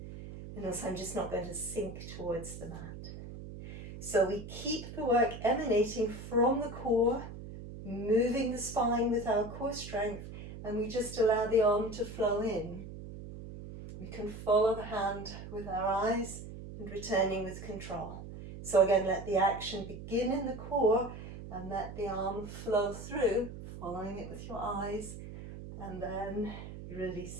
and also I'm just not going to sink towards the mat. So we keep the work emanating from the core, moving the spine with our core strength, and we just allow the arm to flow in. We can follow the hand with our eyes and returning with control. So again, let the action begin in the core and let the arm flow through, following it with your eyes, and then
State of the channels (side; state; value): right; noise; hum, 11 dB below the sound